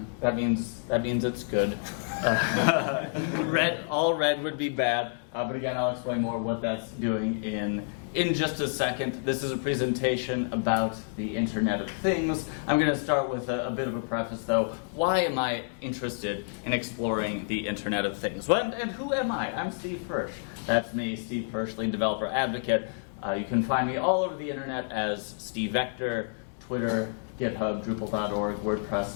That means it's good. All red would be bad. But again, I'll explain more what that's doing in just a second. This is a presentation about the Internet of Things. I'm going to start with a bit of a preface, though. Why am I interested in exploring the Internet of Things? Well, and who am I? I'm Steve Hirsch. That's me, Steve Hirsch, Lean Developer Advocate. You can find me all over the Internet as Steve Vector, Twitter, GitHub, Drupal.org,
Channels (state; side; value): silent; right; 59 dB below the other